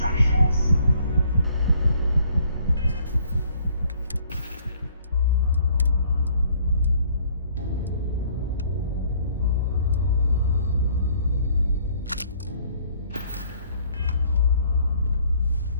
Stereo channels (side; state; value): both; inverted; correlation -0.61